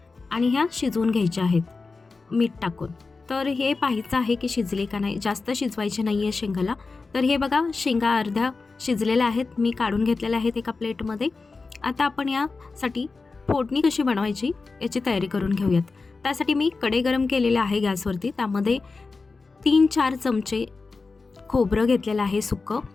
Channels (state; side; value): quieter; right; 4.1 dB